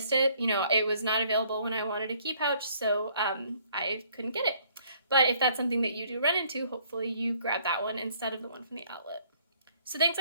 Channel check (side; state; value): both; inverted; correlation -0.62